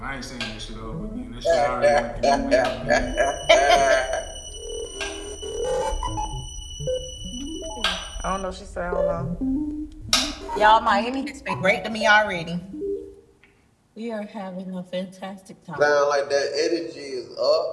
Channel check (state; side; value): identical; both; correlation 1.00